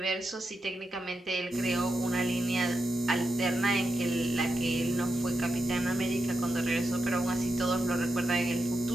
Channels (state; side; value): normal; both; correlation 0.87